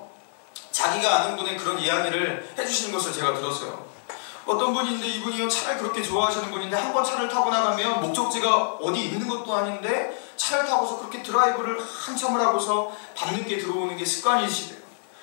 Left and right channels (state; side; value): silent; right; 61 dB below the other